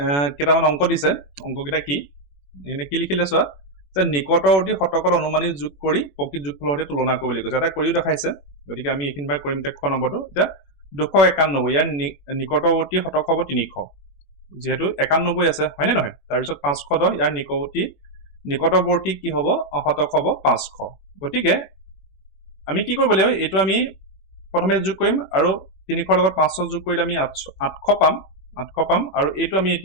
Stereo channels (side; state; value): right; late; 21 ms